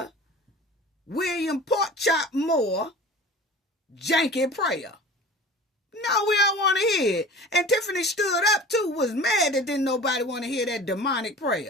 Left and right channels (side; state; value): both; normal; correlation 0.39